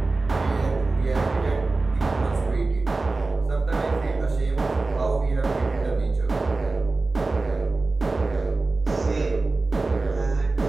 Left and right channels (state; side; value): quieter; left; 3.5 dB